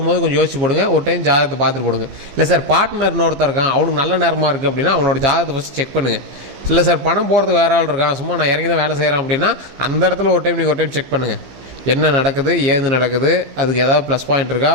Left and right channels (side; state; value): left; late; 15 ms